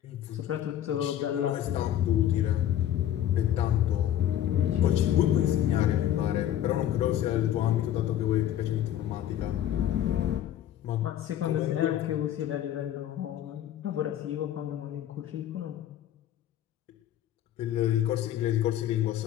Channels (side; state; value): right; quieter; 11.6 dB